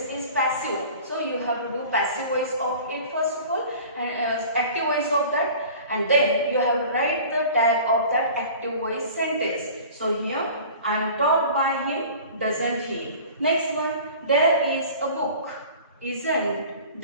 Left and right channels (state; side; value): inverted; both; correlation -0.43